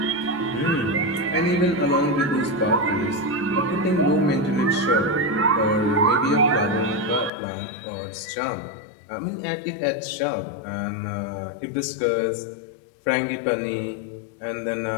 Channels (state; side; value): drops out; right; at 7.3 s